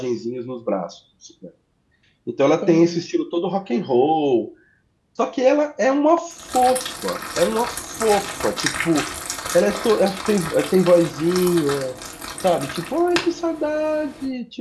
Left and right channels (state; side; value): identical; both; correlation 1.00